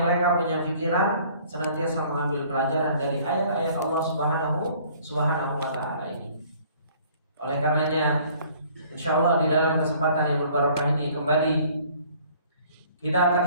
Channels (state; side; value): inverted; both; correlation -0.56